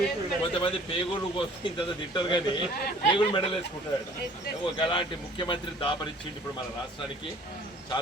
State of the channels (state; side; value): normal; both; correlation 0.53